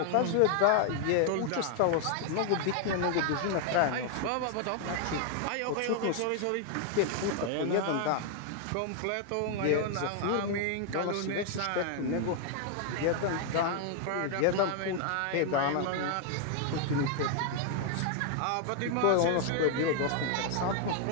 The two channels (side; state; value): both; different; correlation 0.00